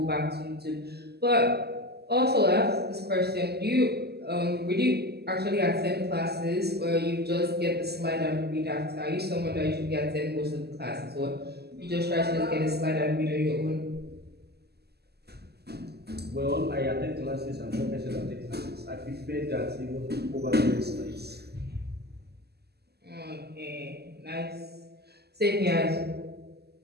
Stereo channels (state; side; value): late; left; 0.47 ms